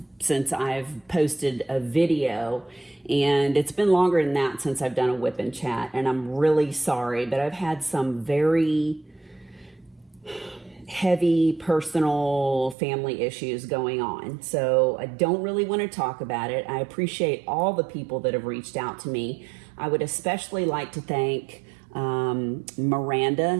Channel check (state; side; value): drops out; left; at 12.8 s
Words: since I've posted a video, and it's been longer than that since I've done a WIP N Chat, and I'm really sorry, but I've had some very heavy personal family issues going on. So I don't really want to talk about it. I appreciate all the people that have reached out to me. I would especially like to thank